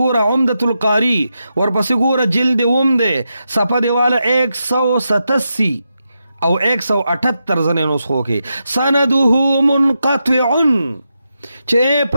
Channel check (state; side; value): inverted; both; correlation -0.86